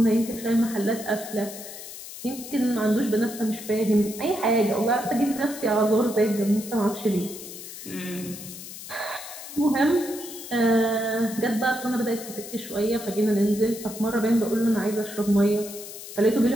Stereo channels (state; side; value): noise; left; hiss, 12 dB below the sound